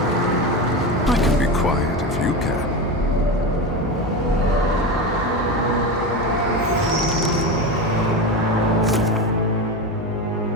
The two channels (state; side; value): normal; both; correlation 0.20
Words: I can be quiet if you can.